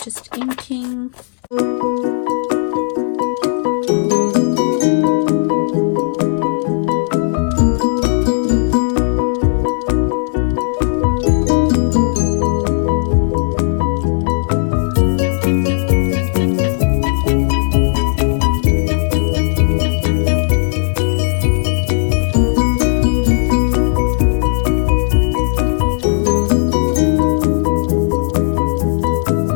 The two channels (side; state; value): right; silent; digital silence